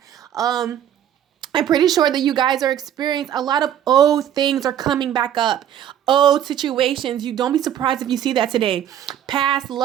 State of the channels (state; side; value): quieter; left; 10.4 dB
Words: I'm pretty sure that you guys are experiencing a lot of old things are coming back up. Old situations. You don't be surprised if you see that today. Past